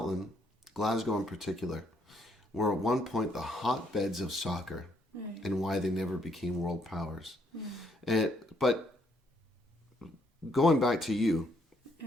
Glasgow in particular, were at one point the hotbeds of soccer, and why they never became world powers. But going back to you,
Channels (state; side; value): normal; both; correlation 0.71